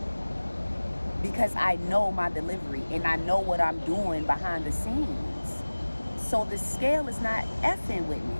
Because I know my delivery and I know what I'm doing behind the scenes. So the scale is not effing with me.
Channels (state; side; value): inverted; both; correlation -1.00